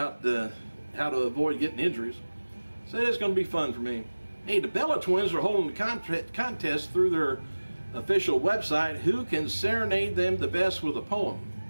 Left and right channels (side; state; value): both; inverted; correlation -1.00